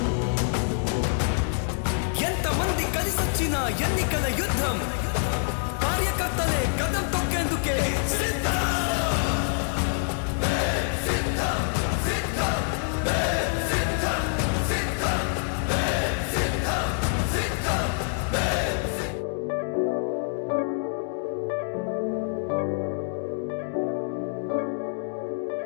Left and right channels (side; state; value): right; silent; 61 dB below the other